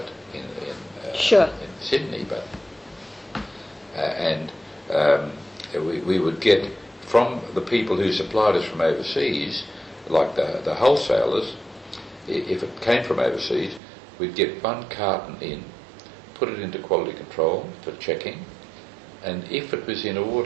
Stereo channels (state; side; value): drops out; left; at 13.8 s